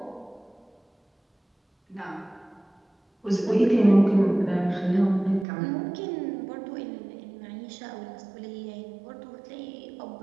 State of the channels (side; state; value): left; drops out; at 5.5 s